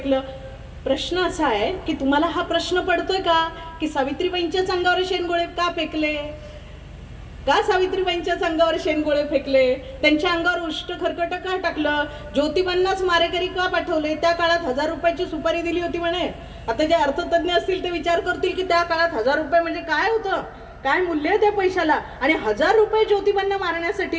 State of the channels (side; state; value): both; identical; correlation 1.00